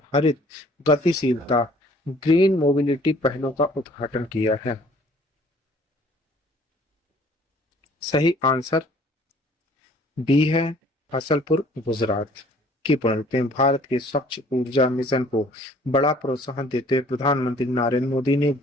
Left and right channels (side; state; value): both; normal; correlation 0.56